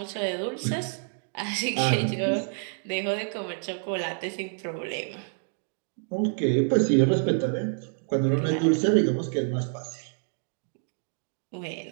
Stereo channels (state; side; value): silent; left; 59 dB below the other